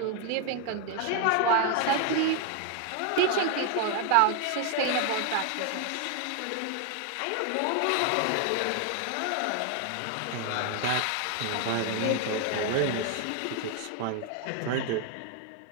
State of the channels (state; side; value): different; both; correlation 0.01